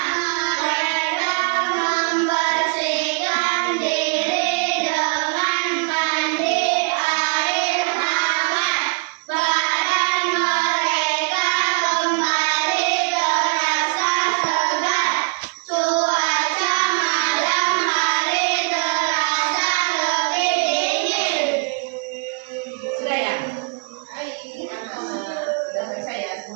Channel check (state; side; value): quieter; left; 37.1 dB